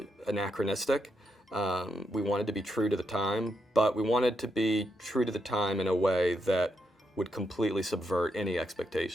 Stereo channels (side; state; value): both; normal; correlation 0.81